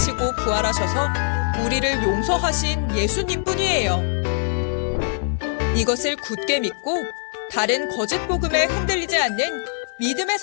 부활하셔서 우리를 용서하신 예수님 뿐이에요. 이것을 굳게 믿고 다른 거짓 복음에 흔들리지 않는 믿음의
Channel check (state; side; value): silent; right; 64 dB below the other